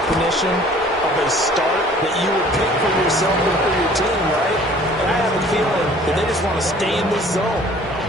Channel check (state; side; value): normal; both; correlation 0.52